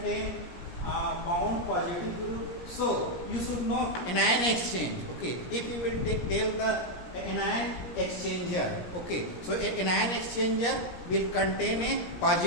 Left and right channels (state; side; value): late; right; 17 ms